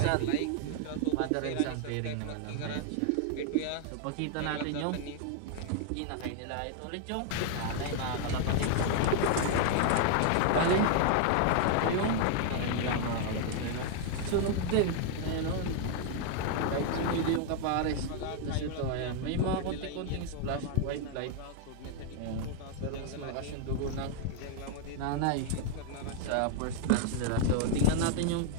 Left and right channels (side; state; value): both; different; correlation 0.00